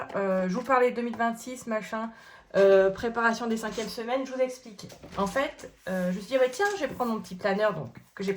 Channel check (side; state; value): both; identical; correlation 1.00